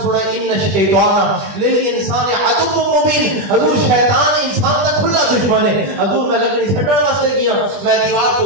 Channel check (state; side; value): late; left; 20 ms